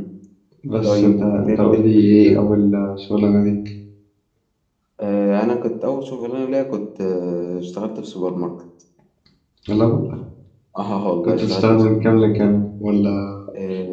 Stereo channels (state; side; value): identical; both; correlation 1.00